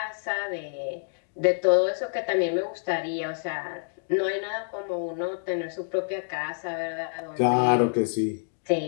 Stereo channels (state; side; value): silent; right; digital silence